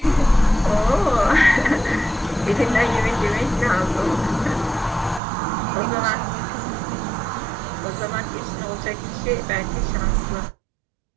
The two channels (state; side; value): drops out; left; at 5.2 s